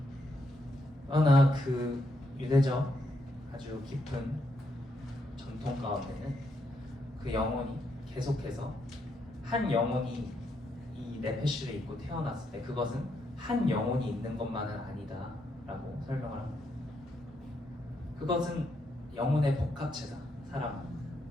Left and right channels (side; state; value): both; normal; correlation 0.78